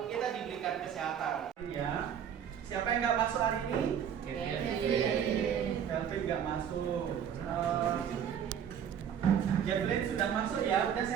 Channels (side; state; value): left; quieter; 8.6 dB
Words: kita diberikan kesehatan. Ya. Siapa yang nggak masuk hari ini? Kelvin nggak masuk. Jacqueline sudah masuk ya. Udah